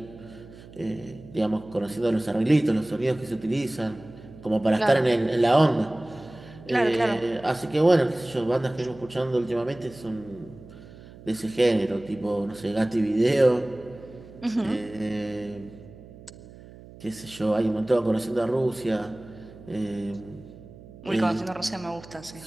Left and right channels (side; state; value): right; noise; hum, 19 dB below the sound